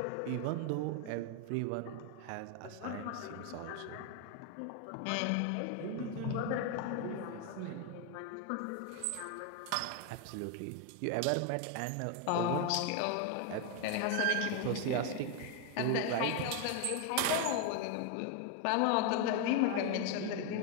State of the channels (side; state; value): both; different; correlation 0.01